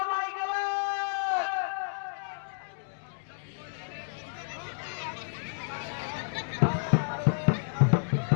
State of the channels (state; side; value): silent; right; digital silence